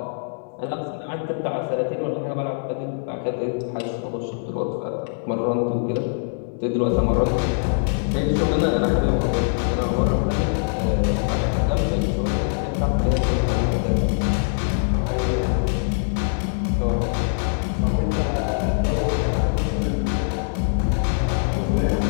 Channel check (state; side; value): silent; right; digital silence